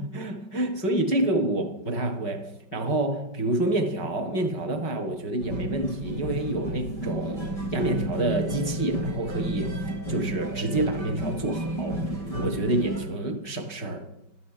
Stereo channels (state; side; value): late; right; 5.3 ms